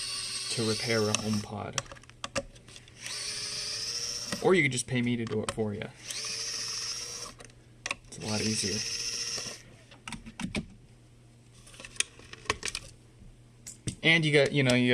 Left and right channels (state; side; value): identical; both; correlation 1.00